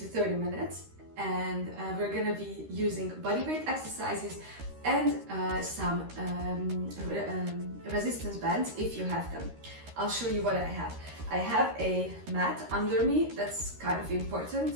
30 minutes, and we're gonna be using bodyweight exercises and some resistance bands if you have them. I'll show you what I have. I have a mat under me. That's kind of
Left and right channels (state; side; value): late; left; 13 ms